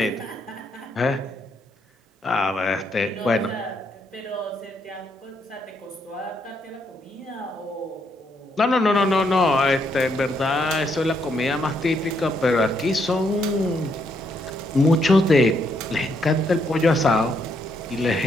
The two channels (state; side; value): normal; both; correlation 0.75